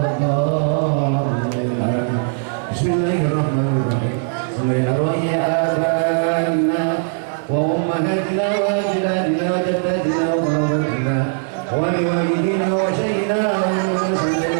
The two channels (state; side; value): silent; left; digital silence